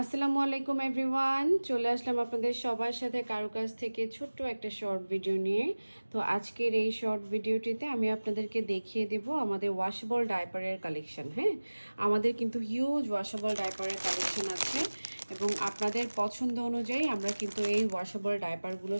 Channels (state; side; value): inverted; both; correlation -1.00